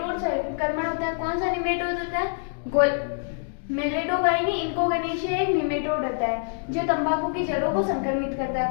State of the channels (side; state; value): right; silent; digital silence